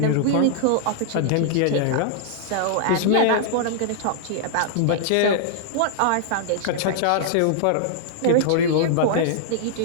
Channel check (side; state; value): both; different; correlation -0.01